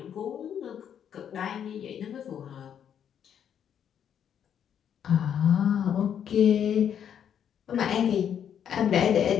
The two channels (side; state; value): right; quieter; 8.8 dB